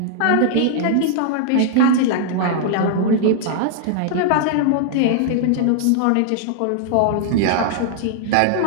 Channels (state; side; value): different; both; correlation -0.01